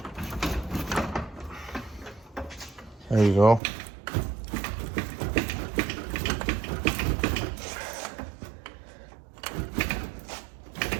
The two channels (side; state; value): left; drops out; at 3.6 s